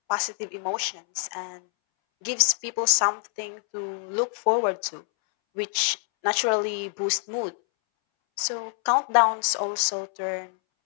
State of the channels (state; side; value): silent; right; 61 dB below the other